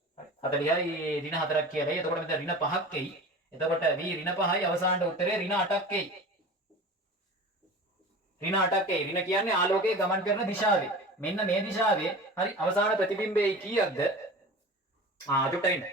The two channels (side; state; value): both; normal; correlation 0.35